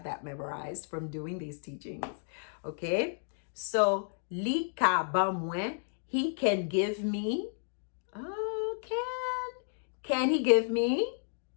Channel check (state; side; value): silent; right; digital silence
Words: that memorized from doing these teachings. Okay? So, li ka ba mwen, he can give me. Oh, can he give me?